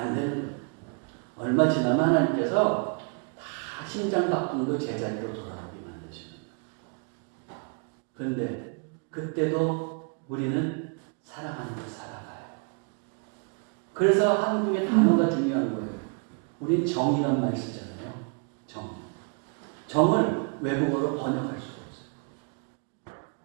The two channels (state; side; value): quieter; left; 39.3 dB